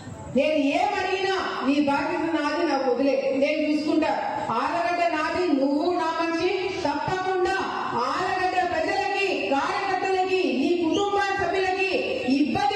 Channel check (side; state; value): both; identical; correlation 1.00